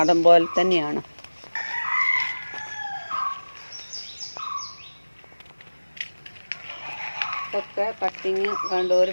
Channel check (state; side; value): inverted; both; correlation -1.00